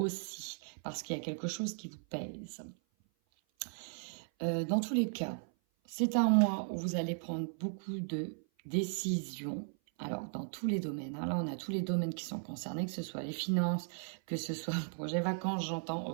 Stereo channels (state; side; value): silent; left; 54 dB below the other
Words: parce qu'il y a quelque chose qui vous pèse. Dans tous les cas, c'est un mois où vous allez prendre beaucoup de décisions. Alors, dans tous les domaines, hein, là, on a tous les domaines qui sont concernés, que ce soit les finances, que ce soit le projet vacances, j'entends,